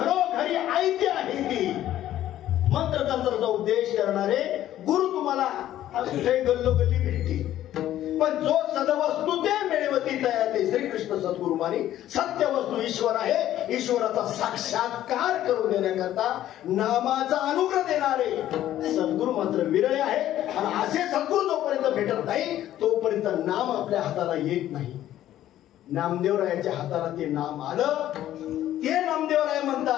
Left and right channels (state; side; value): quieter; right; 12.7 dB